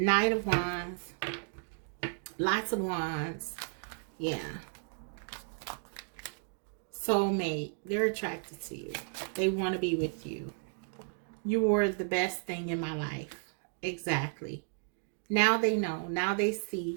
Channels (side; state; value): left; silent; 55 dB below the other